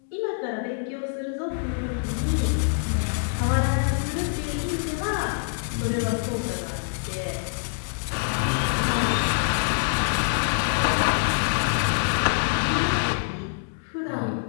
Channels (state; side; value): silent; right; digital silence